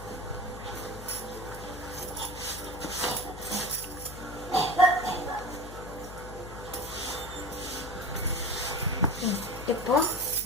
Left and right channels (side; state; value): left; noise; hum, 12 dB below the sound